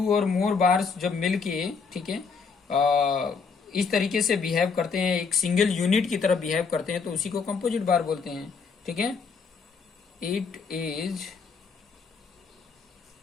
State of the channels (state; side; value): quieter; right; 5.3 dB